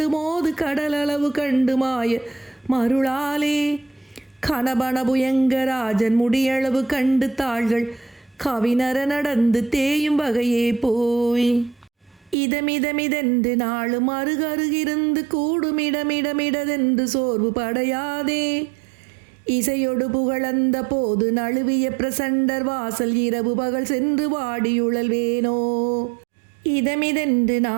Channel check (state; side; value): drops out; left; at 12.4 s